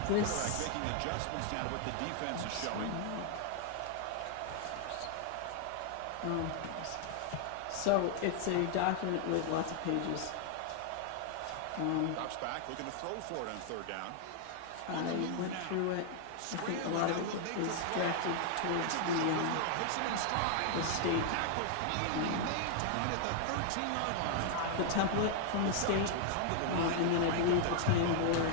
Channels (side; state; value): both; different; correlation 0.00